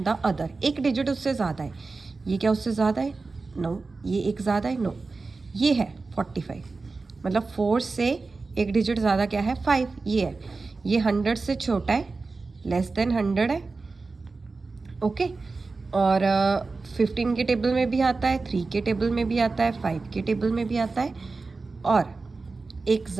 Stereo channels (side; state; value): left; quieter; 3.9 dB